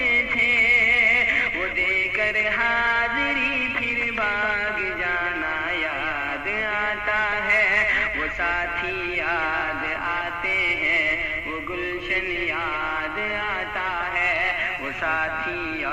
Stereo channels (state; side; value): identical; both; correlation 1.00